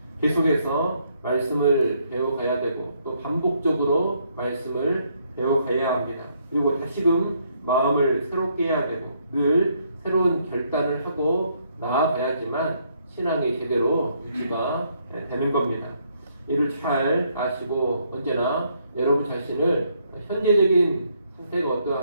계속해서 말씀을 배워가야 되고 또 반복적으로 말씀을 배워가야 합니다. 그리고 다시금 마음을 새롭게 해야 되고 늘 새로운 결단을 하고 나아가야지만 신앙이 제대로 유지가 되는 겁니다. 이를 잘 아시고 언제나 여러분 자신을 현재적인 상태가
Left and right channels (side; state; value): both; inverted; correlation -0.71